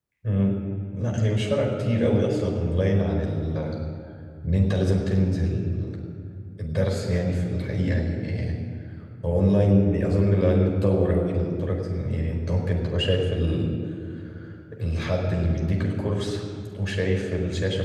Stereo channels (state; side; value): identical; both; correlation 1.00